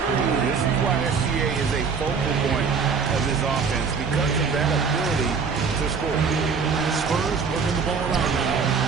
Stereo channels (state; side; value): quieter; left; 5.6 dB